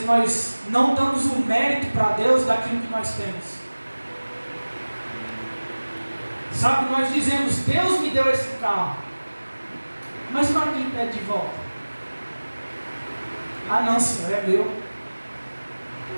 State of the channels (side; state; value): both; inverted; correlation -1.00